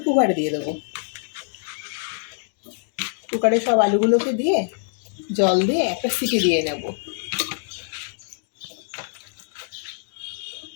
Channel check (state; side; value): silent; right; digital silence